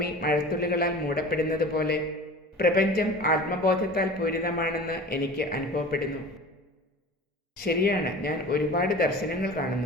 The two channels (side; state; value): both; normal; correlation 0.38